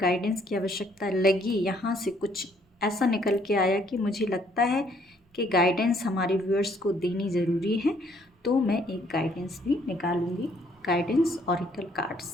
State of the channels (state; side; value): normal; both; correlation 0.66